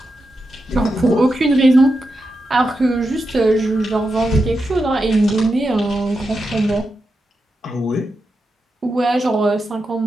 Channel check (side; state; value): both; normal; correlation 0.88